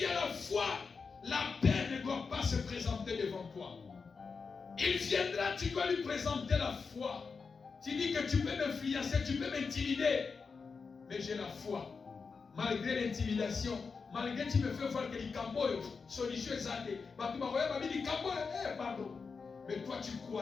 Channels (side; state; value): right; quieter; 5.0 dB